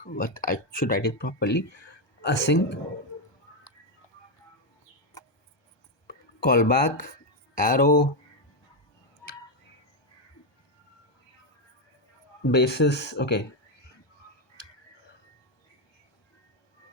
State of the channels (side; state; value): right; late; 1.2 ms